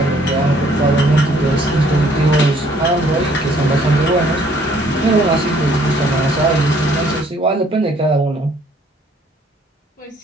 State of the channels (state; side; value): normal; both; correlation 0.62